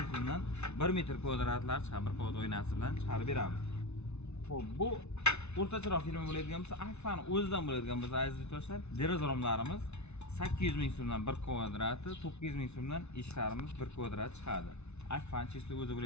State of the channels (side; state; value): right; late; 0.81 ms